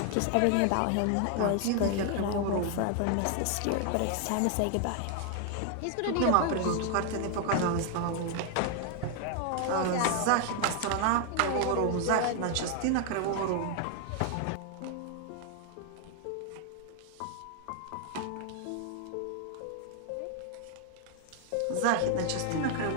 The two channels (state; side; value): different; both; correlation 0.00